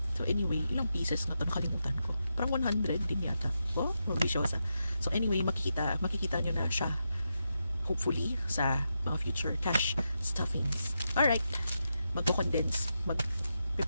So anyway, ilang pieces nga ito, nakalimutan ko. Parang 100 din yata. Oh, mabisyosa. So anyway, makikita nyo na siya. Hopefully, sa mga future cash stuffings. Alright. Magko-condense.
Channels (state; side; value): inverted; both; correlation -0.86